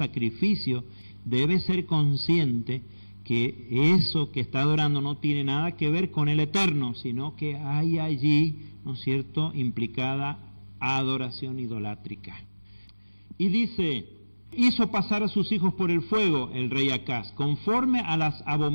debe ser consciente que eso que está adorando no tiene nada que ver con el Eterno, sino que hay allí, ¿no es cierto?, implicada adoración idolátrica. Y dice, hizo pasar a sus hijos por el fuego el rey Acaz, conforme a las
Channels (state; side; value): inverted; both; correlation -1.00